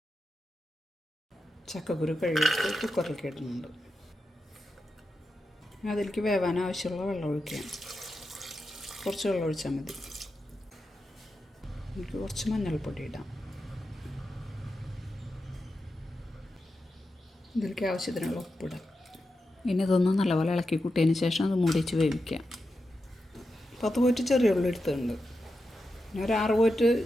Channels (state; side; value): normal; both; correlation 0.89